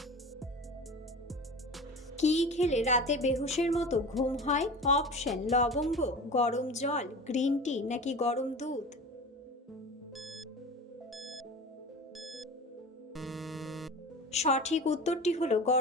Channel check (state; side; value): normal; both; correlation 0.34